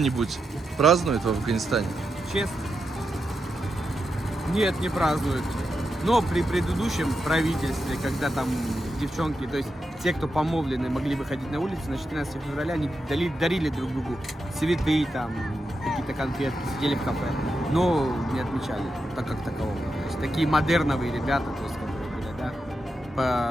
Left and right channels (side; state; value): both; normal; correlation 0.87